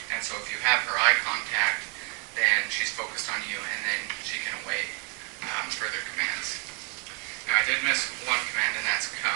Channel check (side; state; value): left; quieter; 35.6 dB